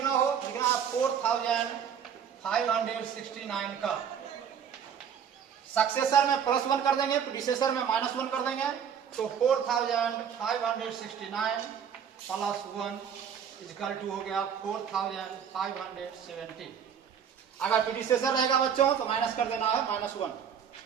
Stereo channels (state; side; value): quieter; left; 7.9 dB